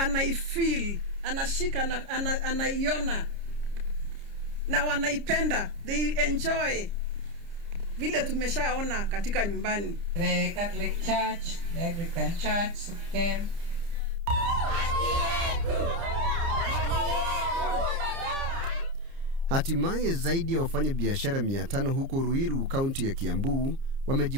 anashika na anaiona na wanaipenda, they enjoy vile tumeshaona katika nyumbani. The Catholic Church, the Anglican Church came. Hatimaye zaidi ya wafanya biashara 500 huko Ruiru, kaunti ya Kiambu,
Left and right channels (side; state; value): left; late; 30 ms